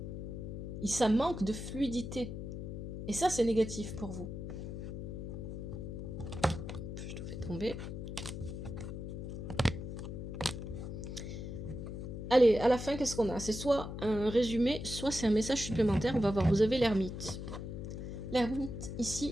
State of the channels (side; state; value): left; noise; hum, 7 dB below the sound